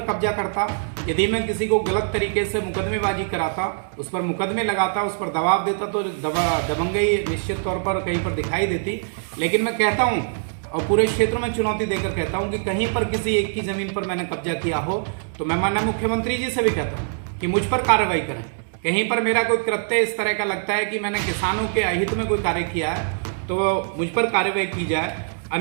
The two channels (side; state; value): left; silent; digital silence